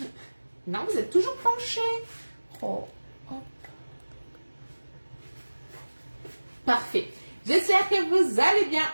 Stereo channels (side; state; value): both; inverted; correlation -1.00